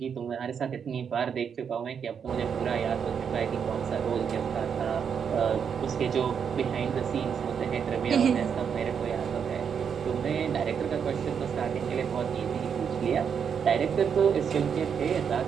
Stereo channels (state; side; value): quieter; left; 7.2 dB